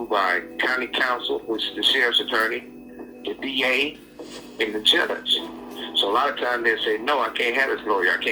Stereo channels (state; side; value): identical; both; correlation 1.00